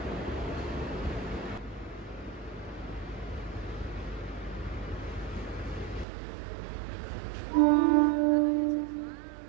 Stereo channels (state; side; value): drops out; left; at 6.1 s